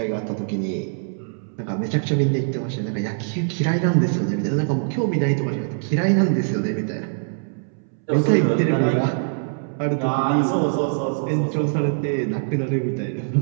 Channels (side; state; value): left; silent; 64 dB below the other